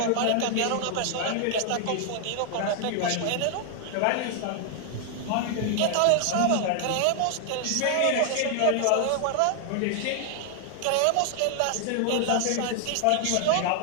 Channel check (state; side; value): different; both; correlation 0.00